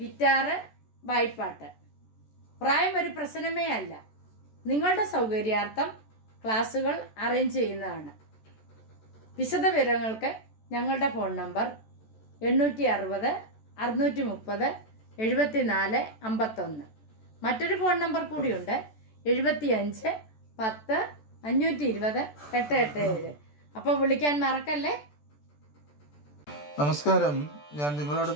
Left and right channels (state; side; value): late; right; 14 ms